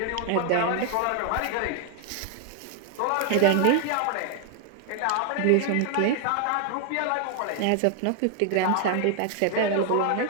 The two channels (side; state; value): both; different; correlation 0.00